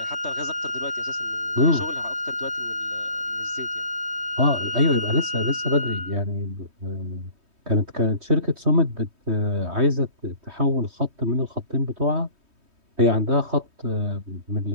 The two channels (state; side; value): late; left; 3.2 ms